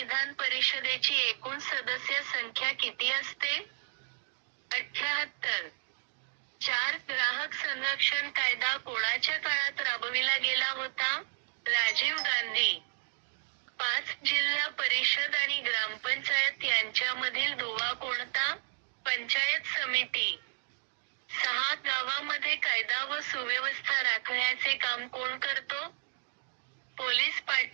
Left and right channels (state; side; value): silent; left; digital silence